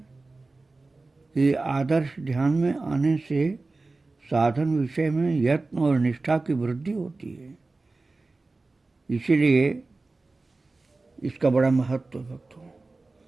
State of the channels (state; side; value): quieter; left; 3.4 dB